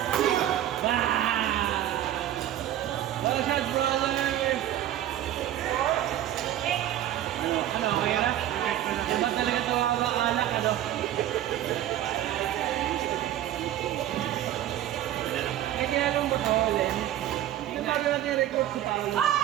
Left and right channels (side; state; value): left; quieter; 12.4 dB